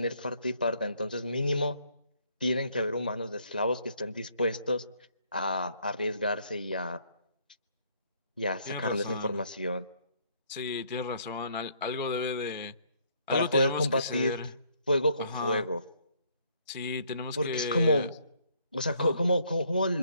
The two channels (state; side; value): inverted; both; correlation -0.66